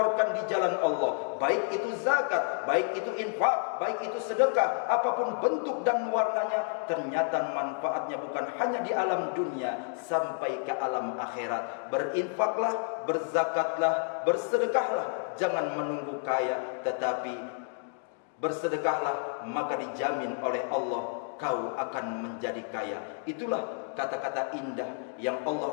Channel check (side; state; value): right; silent; 58 dB below the other